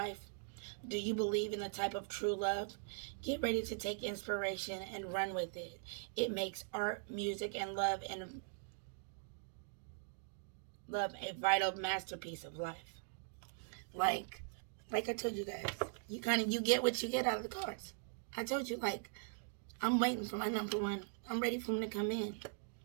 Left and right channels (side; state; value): left; silent; digital silence